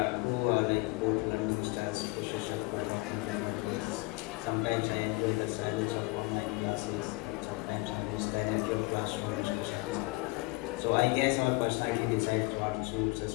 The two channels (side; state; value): right; quieter; 24.4 dB